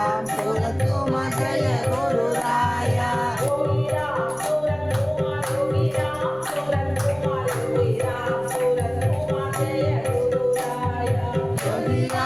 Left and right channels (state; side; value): noise; right; rumble, 24 dB below the sound